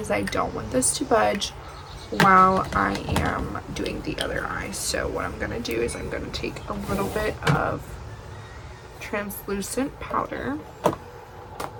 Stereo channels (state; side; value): identical; both; correlation 1.00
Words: I don't want this to budge while I am doing the other eye. So what I'm gonna do is I'm gonna take a little bit of translucent powder,